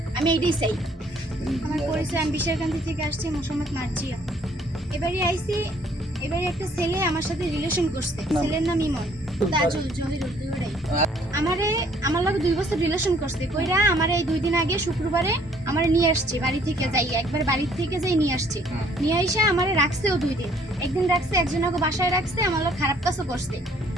আমি এইটাই চাই আমার পরিচয় আমি বিশারকান্দি থেকে আসছি মোহাম্মদ মার্জিয়া এবারে আইছি এবারে একটা ছেলে আমার সাথে রিলেশন করছে ছেলের নাম ইমন তাজুল জহিরুল দুইটাই আমারে আমার লগে 2 বছর রিলেশন করছে কইরা আমারে এই 2 দিন আগে শুক্রবারে আমারে নিয়ে আসছে বাড়ি থেকে যাই একবার বাড়ি থেকে যাই নিয়ে আসছে নিয়ে আইসা আমারে রাখছেও 2 দিন একদিন রাখছে একজনকে বাসায় রাখছে আমার লগে খারাপ কাজও করছে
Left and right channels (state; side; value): normal; both; correlation 0.62